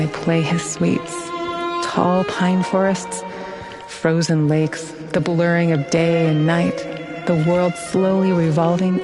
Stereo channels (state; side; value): identical; both; correlation 1.00